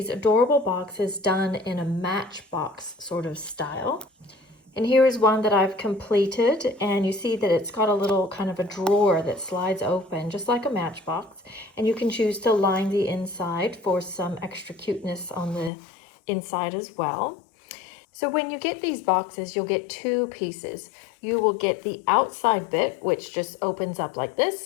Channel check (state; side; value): drops out; right; at 15.7 s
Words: adorable boxes done in a matchbox sort of style. And here is one that I've completed, and you see that it's got a little kind of a drawer that slides open just like a matchbox, and you can choose to line the inside for some extra cuteness on the inside as well. So when you get these boxes, you'll get two pieces. You will get the outside bit, which just opens up like